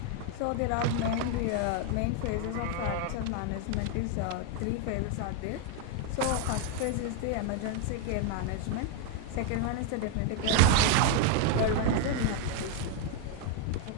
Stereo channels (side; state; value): both; different; correlation 0.01